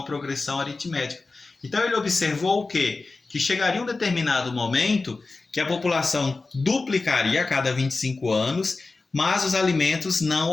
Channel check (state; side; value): quieter; right; 3.7 dB